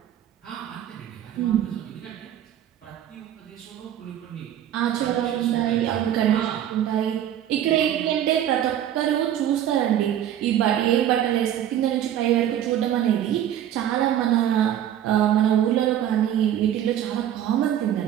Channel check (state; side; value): quieter; left; 11.0 dB